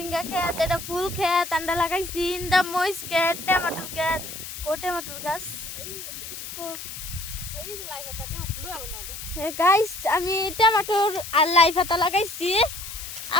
খেত এটা ফুল খেত আমরা লাগাইছি ইন্দা মরিচ খেত টমেটোর খেত টমেটোর গাছ গাইস আমি টমেটোর আর লাই পাতা লাগাইছি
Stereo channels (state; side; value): noise; left; hiss, 10 dB below the sound